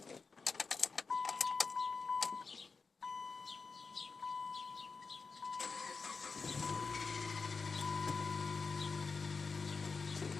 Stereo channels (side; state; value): right; quieter; 4.7 dB